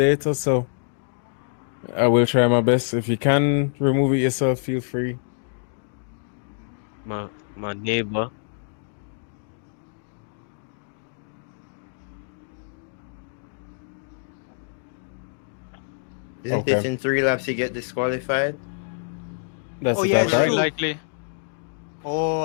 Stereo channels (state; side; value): silent; right; digital silence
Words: so I will try my best. If you can remove it yourself, feel free. My neighbor. Isn't Okay. it in 3 laps you get disqualified? That's Oh, the yeah, top, it's right? true. likely.